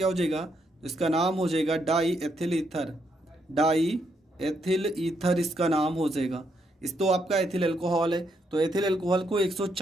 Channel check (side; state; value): both; normal; correlation 0.77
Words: हो जाएगा? इसका नाम हो जाएगा die ethyl ether, die ethyl ether इसका नाम हो जाएगा। इस तो आपका एथिल एल्कोहल है, तो एथिल एल्कोहल को